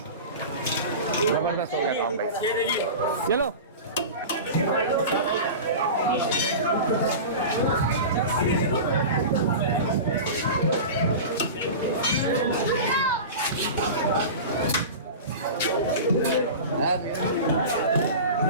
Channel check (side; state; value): both; inverted; correlation -0.30